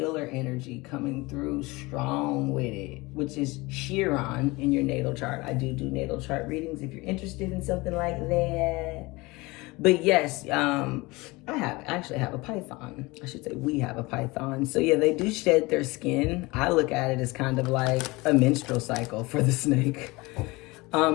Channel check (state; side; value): quieter; right; 23.2 dB